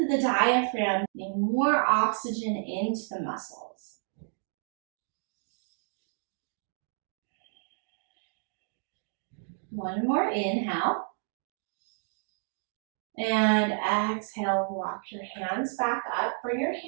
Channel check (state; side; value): silent; left; 57 dB below the other